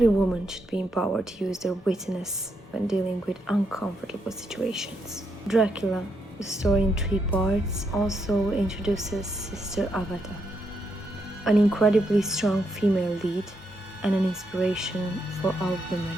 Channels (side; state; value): both; normal; correlation 0.80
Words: woman should be empowered to use their wittiness when dealing with uncomfortable situations. Dracula, the story in 3 parts, also introduces Sister Agatha, an incredibly strong female lead and an inspiration for all women.